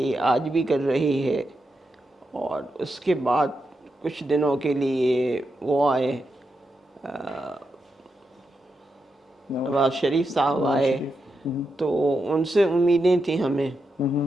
आज भी कर रही है। और उसके बाद कुछ दिनों के लिए वो आए, अ, नवाज शरीफ साहब नवाज आए, शरीफ। हुँ, तो उनसे उम्मीदें थी हमें हुँ,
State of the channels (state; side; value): normal; both; correlation 0.86